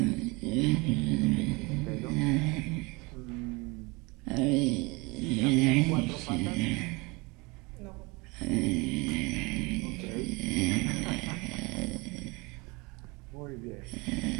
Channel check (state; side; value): quieter; left; 26.2 dB